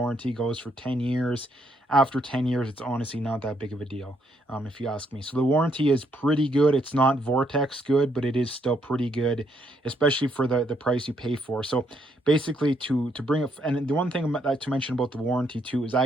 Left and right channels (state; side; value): normal; both; correlation 0.73